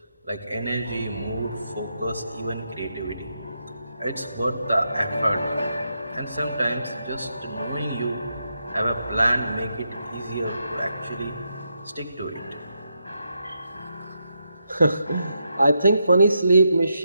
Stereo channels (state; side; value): inverted; both; correlation -0.83